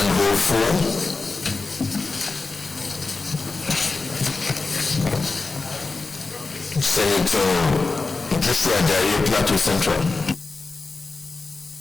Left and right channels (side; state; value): right; quieter; 3.8 dB